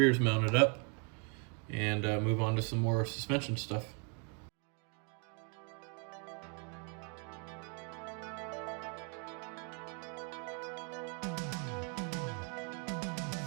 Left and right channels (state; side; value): quieter; left; 37.9 dB